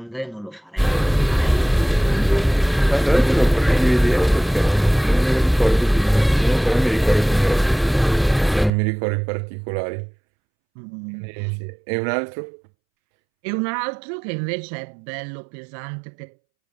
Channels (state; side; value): drops out; left; at 8.7 s